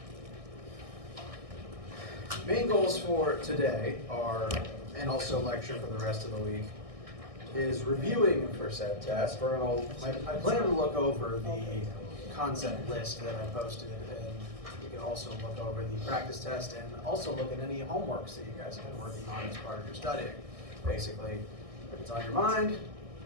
Main goals for today are, and also lecture for the rest of the week, is reviewing for said test. I plan to look over the concept list that I posted, and you can also look over the practice test and also look at any homeworks that you guys have been working on as part of your studying. Basically, if it's on your mind,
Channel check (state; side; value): late; left; 1.6 ms